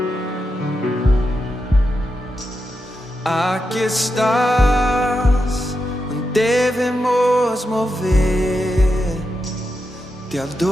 Aqui estás, devemos mover, te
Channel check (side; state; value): both; normal; correlation 0.87